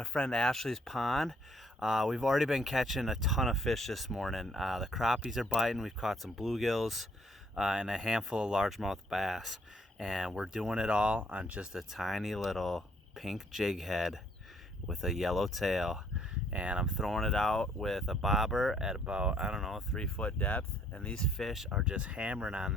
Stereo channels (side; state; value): both; normal; correlation 0.65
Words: friend Ashley's pond. We've already been catching a ton of fish this morning. The crappies are biting. We've caught some bluegills and a handful of largemouth bass. And we're doing it all on just a tiny little pink jig head with a yellow tail. And I'm throwing it out with a bobber at about, I don't know, 3 foot depth, and these fish are just hammering on